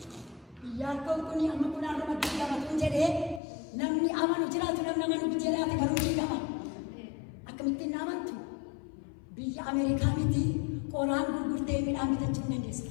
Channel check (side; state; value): right; drops out; at 3.4 s